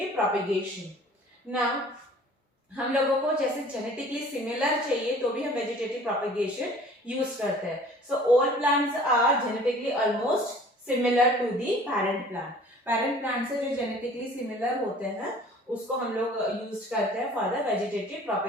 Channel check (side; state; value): both; normal; correlation 0.49